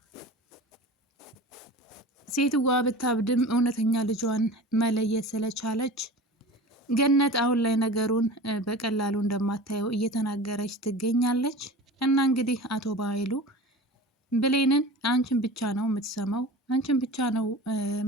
ሴትዋ ብታብድም እውነተኛ ልጇን መለየት ስለቻለች ገነት አሁን ላይ ነገሩን በቀላሉ እንደማታየው እየተናገረች ትገኛለች። እና እንግዲህ አቶ ባይሉ ብሌንን አንቺን ብቻ ነው የምትሰማው፣ አንቺን ብቻ ነው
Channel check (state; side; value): normal; both; correlation 0.35